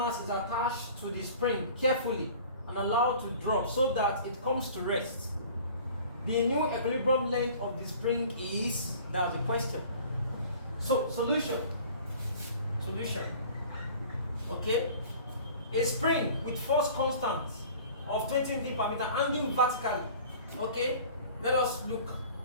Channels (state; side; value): inverted; both; correlation -0.46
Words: is attached to the spring carefully and allowed to drop so that it comes to rest. The new equilibrium length of the spring is, that was the question. So, solution. Okay? A spring with force constant of 20 Newton per meter hanging vertically. Okay? Let us look